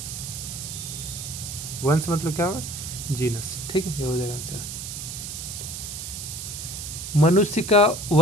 वंश मतलब क्या होगा? जीनस, ठीक है। ये हो जाएगा आंसर। मनुष्य का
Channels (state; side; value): noise; right; hiss, 7 dB below the sound